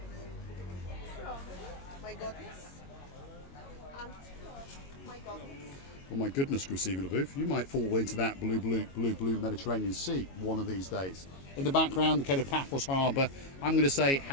my goodness. And my goodness. Oh my goodness, Graciela LaBouffe, you might fall into that blue Mediterranean Sea one of these days. In the background, the Kato Paphos Harbour. I'm going to say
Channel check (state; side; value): late; right; 22 ms